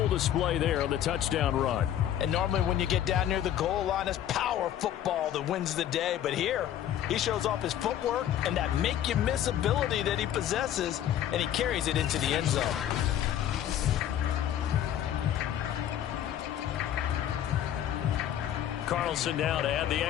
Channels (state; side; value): quieter; right; 11.0 dB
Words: display there on the touchdown run. And normally when you get down near the goal line, it's power football that wins the day. But here, he shows off his footwork and that make-you-miss ability that he possesses, and he carries it into the end zone. Carlson now to add the